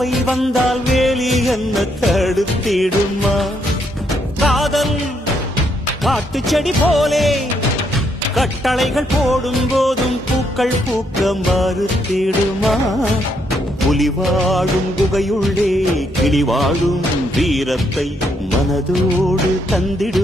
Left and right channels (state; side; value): normal; both; correlation 0.75